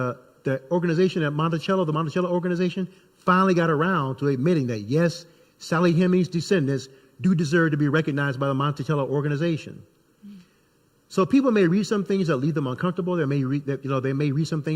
organization at Monticello, the Monticello organization, finally got around to admitting that, yes, Sally Hemings' descendants do deserve to be recognized by the Monticello organization. So people may read some things that leave them uncomfortable. They may read some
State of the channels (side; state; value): both; identical; correlation 1.00